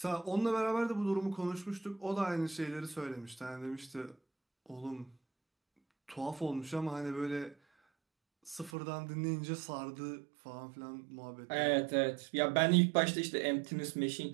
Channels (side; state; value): left; drops out; at 8.7 s